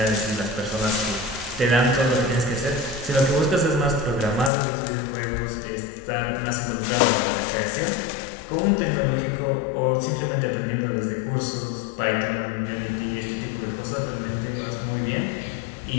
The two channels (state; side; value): drops out; right; at 4.5 s